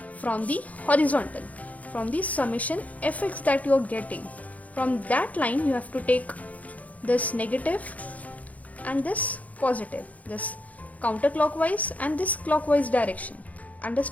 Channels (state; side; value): late; right; 0.071 ms